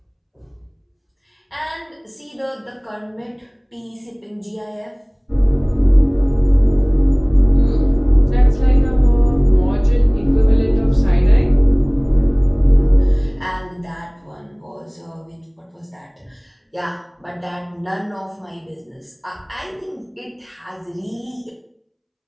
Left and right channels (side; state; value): both; identical; correlation 1.00